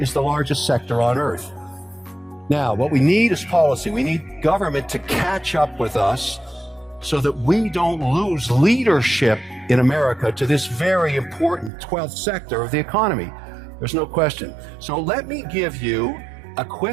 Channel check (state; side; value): drops out; left; at 11.7 s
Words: is the largest sector on earth. Now, what we need is policy. We need government to catch up with us so that we don't lose leadership in America to this very important 12th sector of the economy. There's no question. So let me give you a